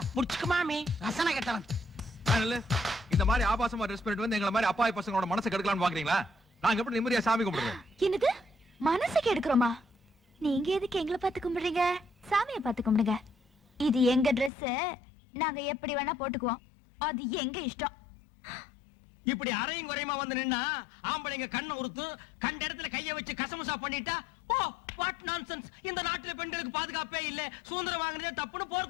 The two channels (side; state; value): right; drops out; at 14.5 s